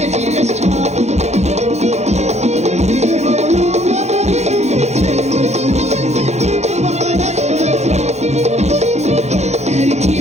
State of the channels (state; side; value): late; left; 0.32 ms